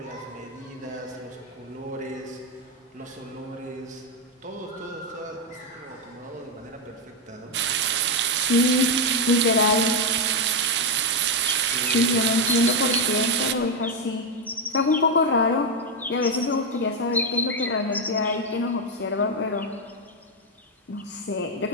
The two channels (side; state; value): both; normal; correlation 0.05